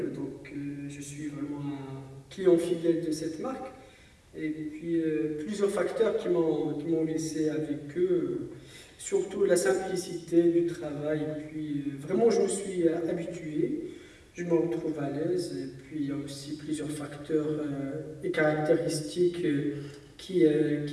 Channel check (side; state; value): both; identical; correlation 1.00